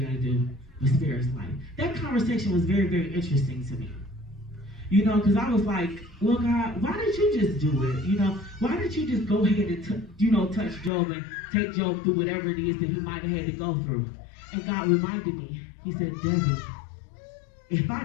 gotta do, but spare his life. That conversation was very, very interesting to me. You know, because I was like, well, God, why did you just do it? You know, why did you just go ahead and, touch Job and take Job through whatever it is that he might have had to go through? And God reminded me, he said, Debbie, if I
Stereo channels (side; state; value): right; drops out; at 10.9 s